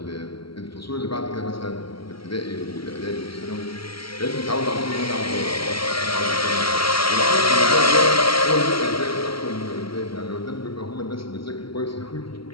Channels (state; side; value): late; right; 0.74 ms